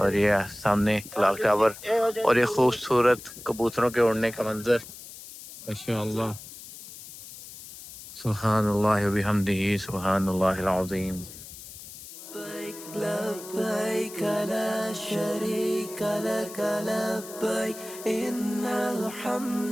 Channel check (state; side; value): noise; left; hiss, 15 dB below the sound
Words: یہ سامنے کلاک ٹاور اور یہ خوبصورت کبوتروں کے اڑنے کا منظر. ماشاءاللہ، سبحان اللہ وبحمدہ، سبحان اللہ العظیم. لبيك لبيك لا شريك لك لبيك إن